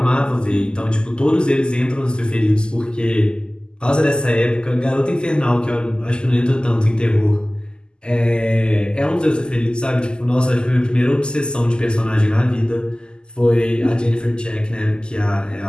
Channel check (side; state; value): right; late; 0.047 ms